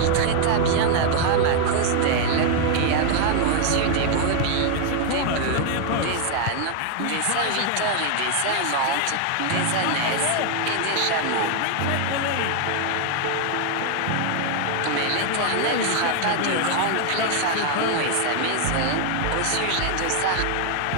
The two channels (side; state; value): both; different; correlation 0.00